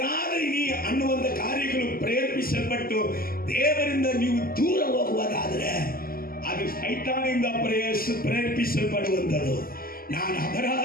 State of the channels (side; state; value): right; late; 0.42 ms